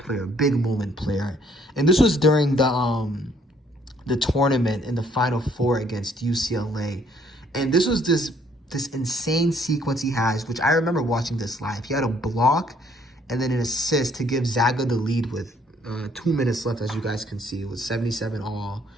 big moment player. And this was during the tournament in the Final Four against UCLA. And this was this insane sequence he has, which I remember watching this live. He had a block and then an assist to give Zaga the lead with 2 minutes left, as you guys can see. It was 77 all.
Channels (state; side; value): normal; both; correlation 0.64